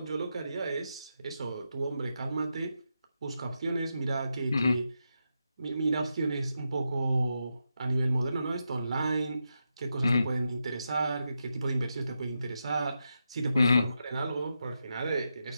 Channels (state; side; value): inverted; both; correlation -0.86